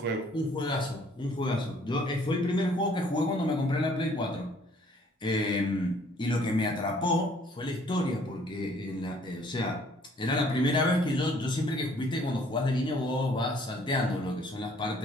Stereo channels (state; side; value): normal; both; correlation 0.60